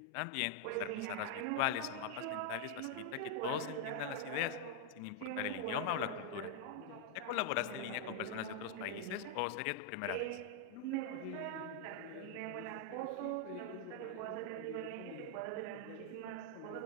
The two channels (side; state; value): both; different; correlation 0.00